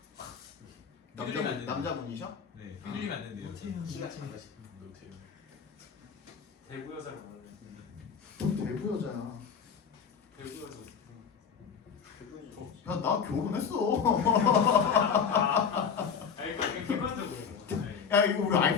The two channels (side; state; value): right; quieter; 6.7 dB